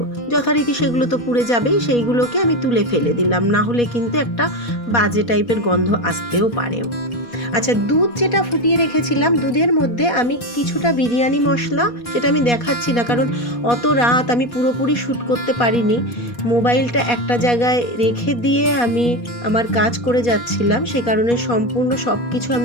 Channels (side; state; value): right; late; 4.2 ms